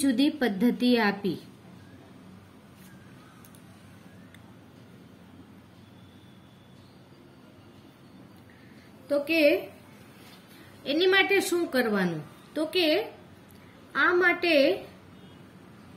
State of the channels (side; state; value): both; identical; correlation 1.00